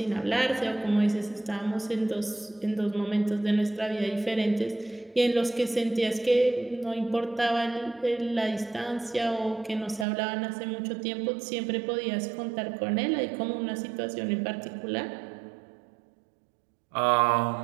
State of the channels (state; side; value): drops out; left; at 10.1 s